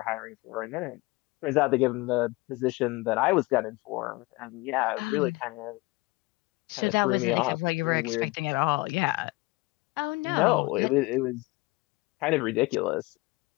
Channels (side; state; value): right; quieter; 23.3 dB